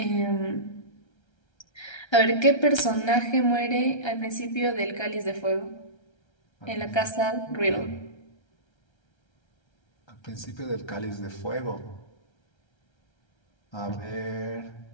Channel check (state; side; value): late; right; 1.3 ms